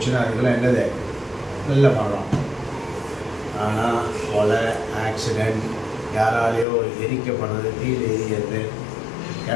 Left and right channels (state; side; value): drops out; right; at 6.7 s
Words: அதுக்கெல்லாம் என்னது? நல்ல மரணம். ஆனால் கொலை, ஆக்சிடெண்ட், யாராலேயோ எரிக்கப்படுறது, தீயில் எரிகிறது,